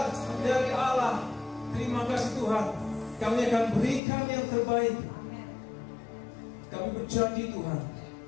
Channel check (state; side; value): drops out; right; at 4.0 s